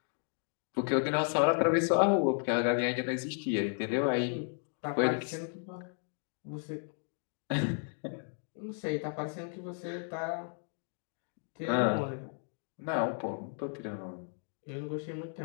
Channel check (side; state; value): right; silent; 55 dB below the other